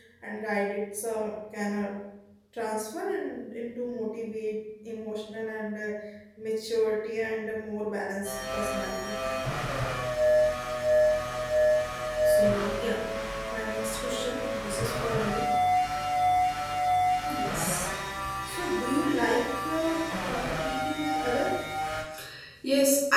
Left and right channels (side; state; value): both; identical; correlation 1.00